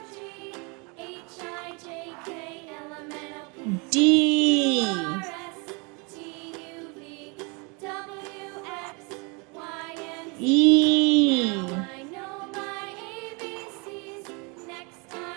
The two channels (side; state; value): left; quieter; 31.1 dB